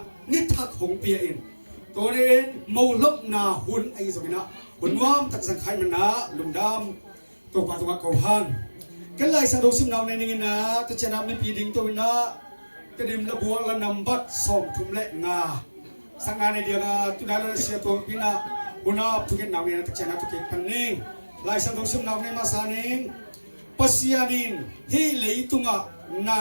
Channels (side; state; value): both; inverted; correlation -1.00